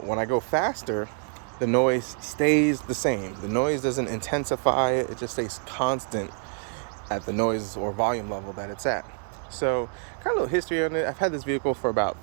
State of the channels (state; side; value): silent; left; 55 dB below the other